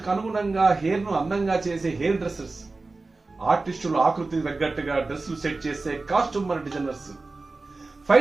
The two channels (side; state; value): left; quieter; 3.5 dB